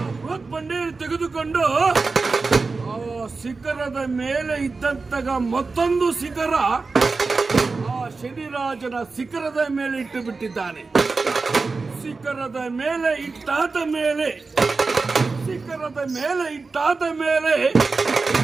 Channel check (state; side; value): quieter; left; 4.1 dB